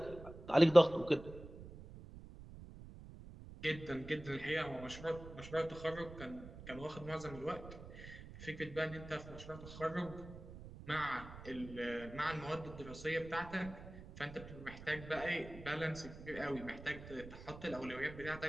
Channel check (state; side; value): noise; right; rumble, 14 dB below the sound